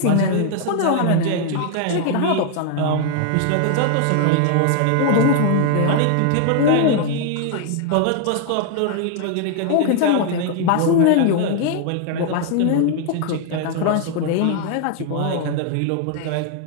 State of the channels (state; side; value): different; both; correlation 0.00